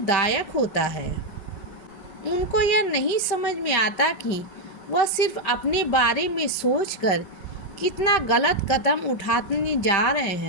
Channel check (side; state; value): right; late; 5.2 ms